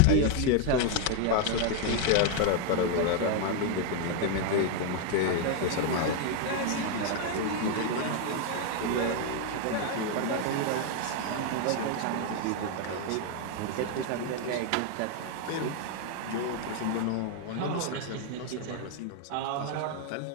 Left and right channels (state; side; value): different; both; correlation 0.00